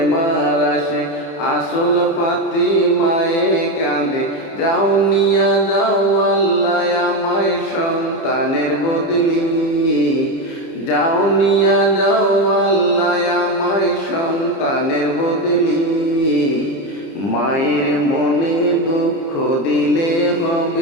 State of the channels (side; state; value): right; late; 30 ms